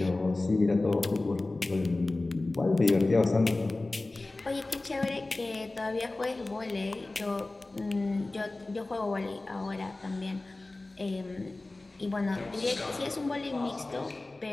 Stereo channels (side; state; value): right; quieter; 3.0 dB